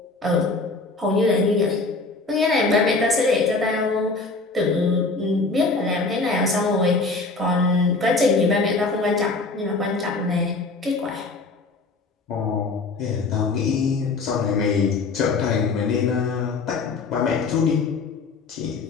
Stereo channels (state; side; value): quieter; right; 3.8 dB